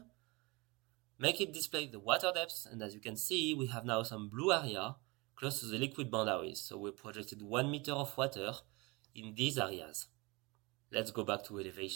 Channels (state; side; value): quieter; left; 25.6 dB